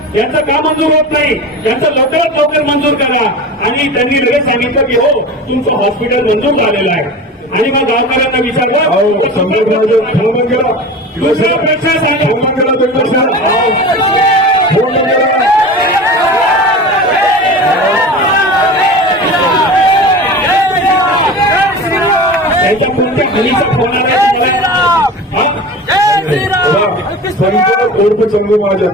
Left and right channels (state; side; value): normal; both; correlation 0.32